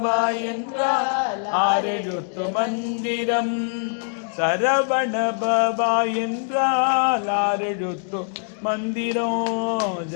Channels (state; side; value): silent; right; digital silence